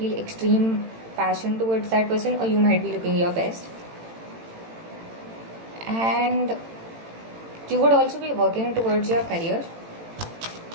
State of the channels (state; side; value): late; left; 18 ms